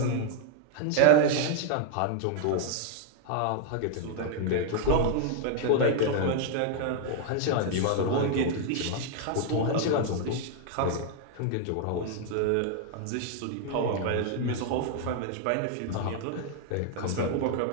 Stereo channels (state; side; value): different; both; correlation 0.00